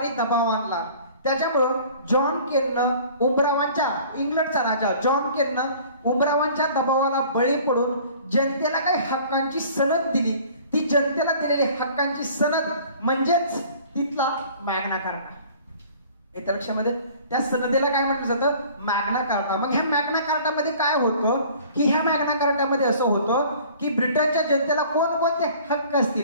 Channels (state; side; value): inverted; both; correlation -0.49